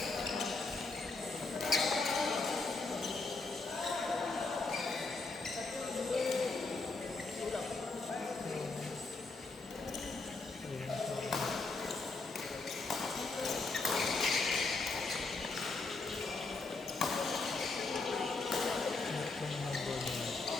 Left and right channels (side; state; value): right; quieter; 3.7 dB